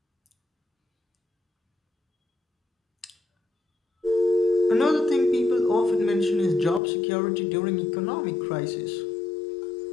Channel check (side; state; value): right; drops out; at 6.8 s